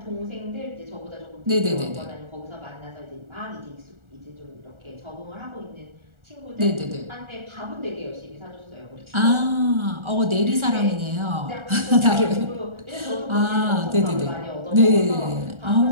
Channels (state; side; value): late; left; 1.4 ms